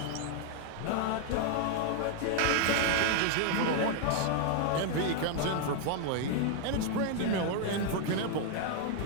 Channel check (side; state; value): both; different; correlation 0.00